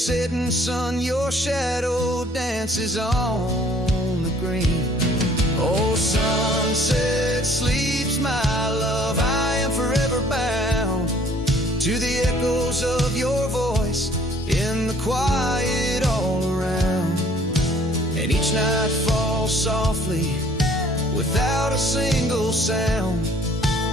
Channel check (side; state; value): both; normal; correlation 0.57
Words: sun your shadow dances on the green. Oh, sunset sleeps, my love, I am forever bound to the echoes of your voice in the quiet all around. And each night falls softly without a single sound,